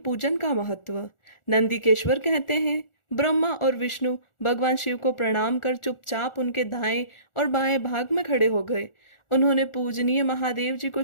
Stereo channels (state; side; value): late; right; 1.4 ms